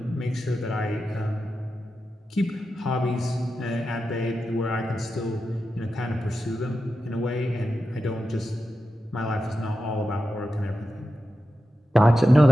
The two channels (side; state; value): both; normal; correlation 0.91